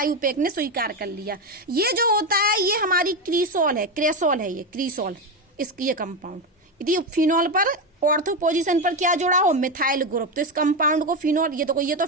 ने स्वीकार कर लिया। ये जो होता है ये हमारी क्रीसॉल है, क्रेसॉल है, ये क्रीसॉल, इसकी ये कंपाउंड। यदि फिनॉल पर ऑर्थो पोजीशन पर क्या जुड़ा हो, मिथाइल ग्रुप, तो इस कंपाउंड को फिनॉल, ये तो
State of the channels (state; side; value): normal; both; correlation 0.13